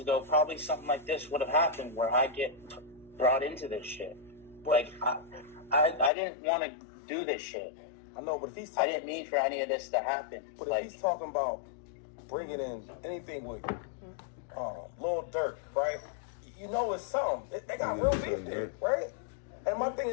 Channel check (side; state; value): right; drops out; at 6.1 s